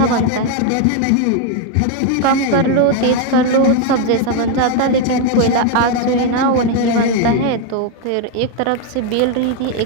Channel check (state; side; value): different; both; correlation 0.01